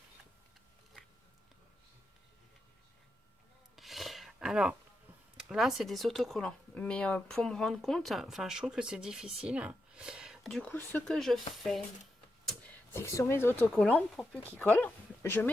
Alors, là, c'est des autocollants. Mais pour me rendre compte, enfin, je trouve que c'est difficile. Du coup, ce que je fais, c'est que sur mes autocollants, pour plus qu'ils collent, je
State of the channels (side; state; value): both; normal; correlation 0.86